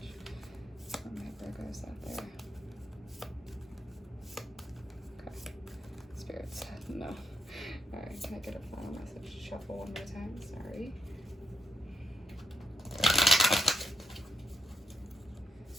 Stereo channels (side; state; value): both; normal; correlation 0.80